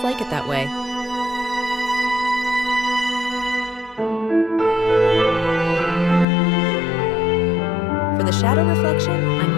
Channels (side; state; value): right; drops out; at 6.2 s